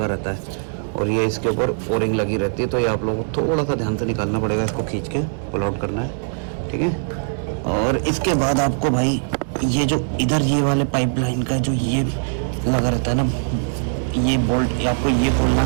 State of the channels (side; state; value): left; silent; 62 dB below the other